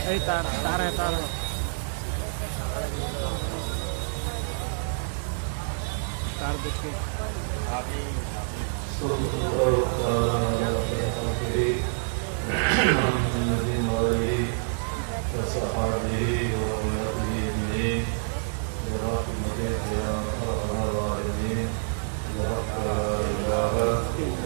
یہی تار ہے, تار ہے, تار ہے, تار دیکھ کے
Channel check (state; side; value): silent; left; 59 dB below the other